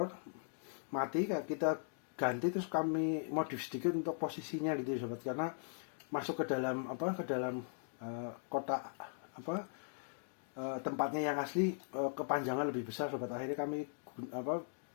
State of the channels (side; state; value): right; silent; digital silence